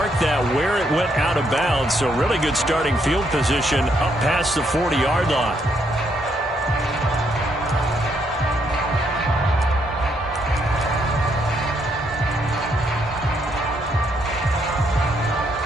that where it went out of bounds, so really good starting field position up past the 40-yard line.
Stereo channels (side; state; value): both; normal; correlation 0.74